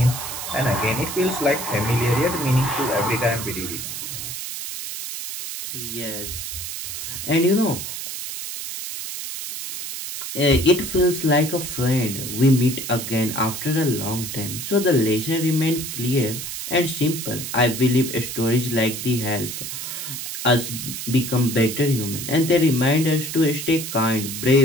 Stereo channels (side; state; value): right; noise; hiss, 6 dB below the sound